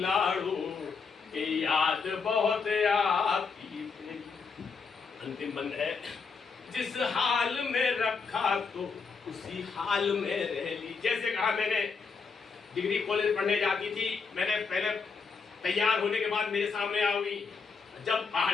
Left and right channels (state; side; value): quieter; right; 5.1 dB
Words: के याद बहुत आती। अंतिम बंद है, जिस हाल में रखा तो उसी हाल में रह ली। जैसे कहा मैंने डिग्री कॉलेज पढ़ने जाती थी, मैंने पहले तैयार होने के बाद मेरे सामने आओगी, जब